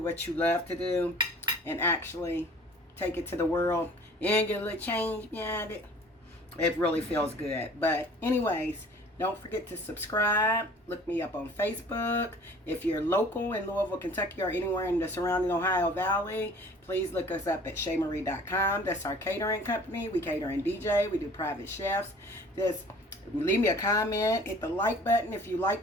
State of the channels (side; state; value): both; normal; correlation 0.49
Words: what you love to do and actually take it to the world and get a little change behind it, it really feels good. But anyways, don't forget to subscribe. Look me up on Facebook. If you're local in Louisville, Kentucky, or anywhere in the surrounding Ohio Valley, please look us up at ShayMarie.com. That's our catering company. We cater and DJ. We do private chefs. Just leave me a comment. Hit the like button if you